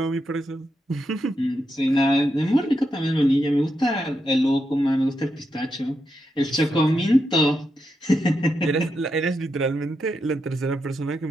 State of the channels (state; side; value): normal; both; correlation 0.84